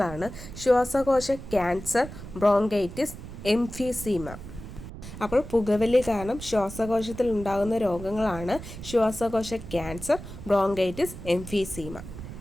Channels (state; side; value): noise; right; rumble, 12 dB below the sound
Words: ശ്വാസകോശ ക്യാൻസർ, ബ്രോങ്കൈറ്റിസ്, എംഫീസീമ. അപ്പോൾ പുകവലി കാരണം ശ്വാസകോശത്തിൽ ഉണ്ടാകുന്ന രോഗങ്ങളാണ് ശ്വാസകോശ ക്യാൻസർ, ബ്രോങ്കൈറ്റിസ്, എംഫീസീമ.